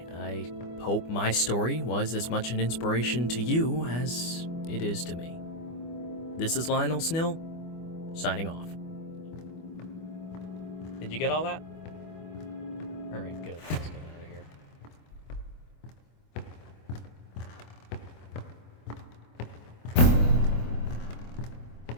I hope my story was as much an inspiration to you as it is to me. This is Lionel Snill, signing off. Did you get all that? Alright, good. Let's get out of here.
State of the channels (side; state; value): right; late; 24 ms